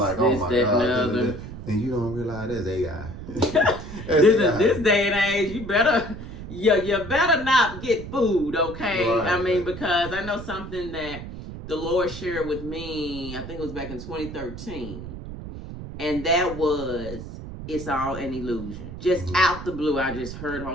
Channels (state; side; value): noise; right; rumble, 10 dB below the sound